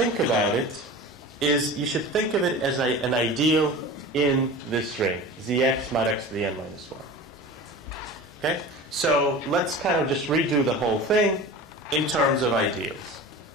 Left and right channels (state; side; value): normal; both; correlation 0.35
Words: about it is you should think of it as an ideal in this ring, Zx mod x to the n minus 1. Okay? So let's kind of just redo the whole thing in terms of ideals.